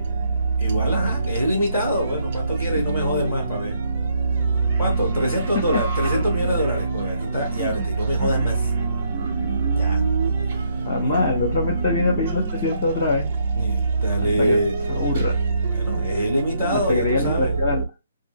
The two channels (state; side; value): inverted; both; correlation -0.73